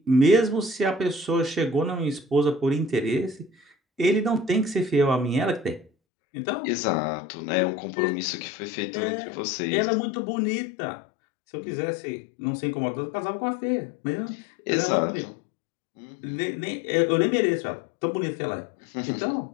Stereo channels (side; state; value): right; drops out; at 5.9 s